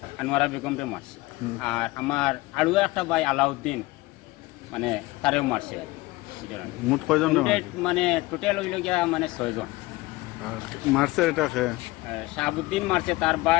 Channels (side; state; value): right; quieter; 20.7 dB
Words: আনোয়ারা বেগম রে মারছে। আর আমার আরো একটা ভাই আলাউদ্দিন মানে তারেও মারছে। মোট কয়জন রে মারছে? মানে টোটাল হইল গিয়া মানে 6 জন। আর মারছে এটা কে? শাহাবুদ্দিন মারছে, তার